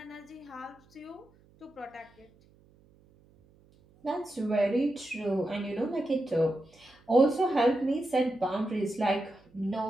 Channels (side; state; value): right; noise; hum, 29 dB below the sound